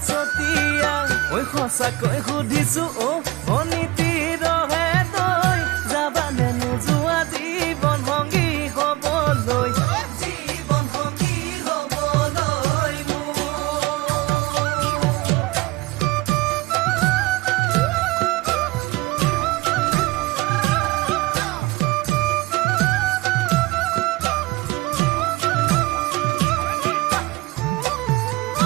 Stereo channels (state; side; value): quieter; left; 20.6 dB